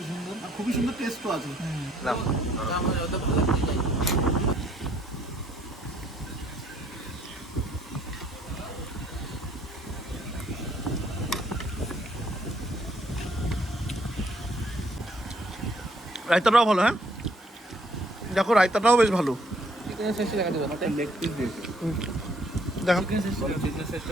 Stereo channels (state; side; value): normal; both; correlation 0.65